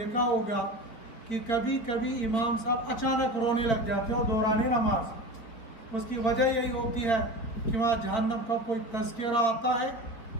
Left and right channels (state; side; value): late; right; 4.3 ms